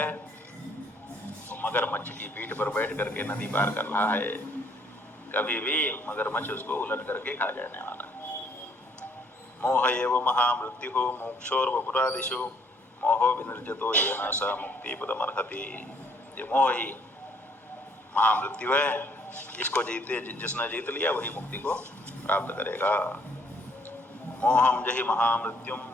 वो मगरमच्छ की पीठ पर बैठ करके नदी पार कर रहा है। कभी भी मगरमच्छ उसको उलट करके खा जाने वाला है। मोह एव महामृत्यु मोक्षोर्वपुरादिषु मोहो विनिर्जतो येन स मुक्तिपदमर्हति। ये मोह ही महामृत्यु है, इसको जिसने जीत लिया वही मुक्ति को प्राप्त करेगा। मोहम जहि महामृत्युम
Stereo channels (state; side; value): normal; both; correlation 0.65